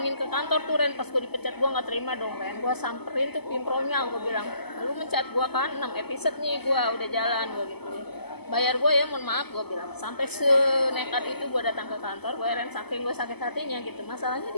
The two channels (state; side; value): late; right; 0.97 ms